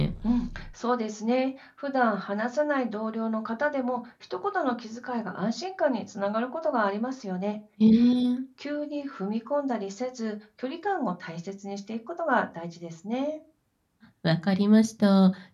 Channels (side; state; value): both; identical; correlation 1.00